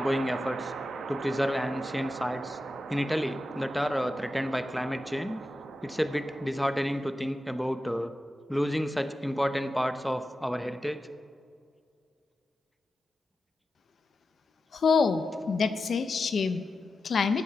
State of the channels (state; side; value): normal; both; correlation 0.91